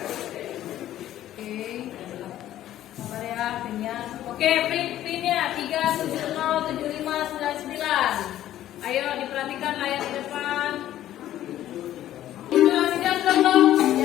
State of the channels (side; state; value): right; quieter; 12.8 dB